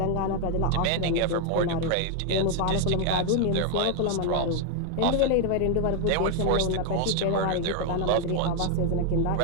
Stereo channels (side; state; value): both; different; correlation 0.01